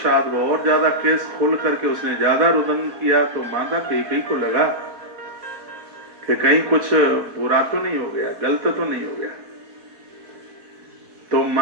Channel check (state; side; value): late; left; 4.1 ms